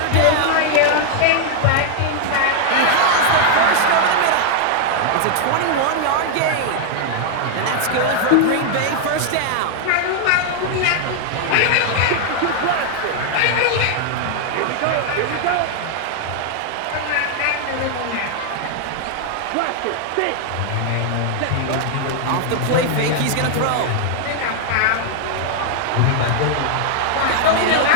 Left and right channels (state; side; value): different; both; correlation 0.00